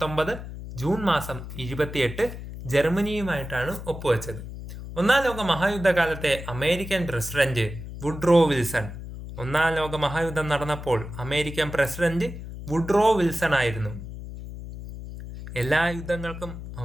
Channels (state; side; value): noise; left; hum, 10 dB below the sound